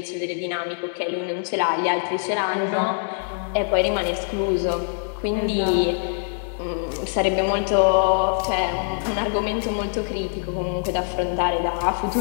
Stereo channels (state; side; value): silent; right; digital silence